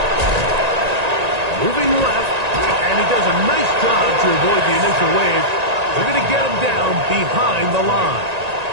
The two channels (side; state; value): left; late; 1.9 ms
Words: Moving left, and he does a nice job to avoid the initial wave. They're going to get him down behind the line.